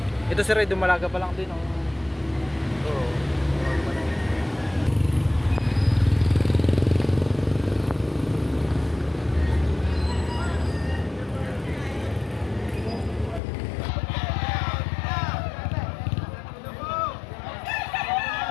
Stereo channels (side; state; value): right; drops out; at 13.4 s